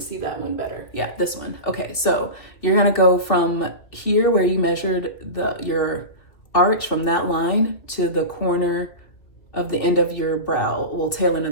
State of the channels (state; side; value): late; right; 2.8 ms